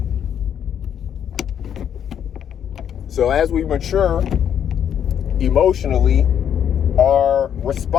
So as we mature emotionally, our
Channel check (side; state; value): right; quieter; 9.0 dB